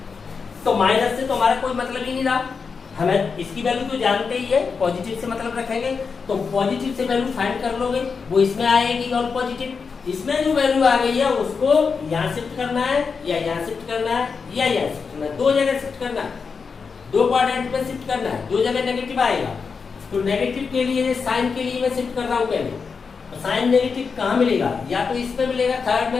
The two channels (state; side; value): quieter; right; 5.4 dB